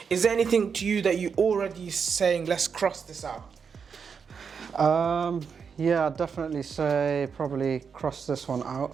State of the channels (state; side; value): quieter; left; 6.2 dB